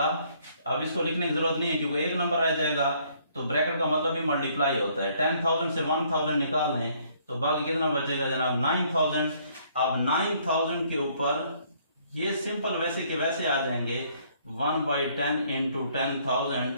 अब इसको लिखने की जरूरत नहीं है क्योंकि एक नंबर रह जाएगा, तो ब्रैकेट का मतलब भी मल्टीप्लाई होता है। 10,000 से 1,000 निकाल लें तो बाकी कितना बचेगा जनाब, 9,000। अब 9,000 के ऊपर ये सिंपल वैसे के वैसे आ जाएंगे, 1/10 इंटू 10,000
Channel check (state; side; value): inverted; both; correlation -0.64